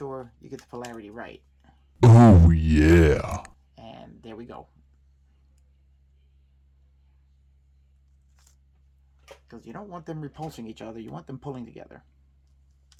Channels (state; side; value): identical; both; correlation 1.00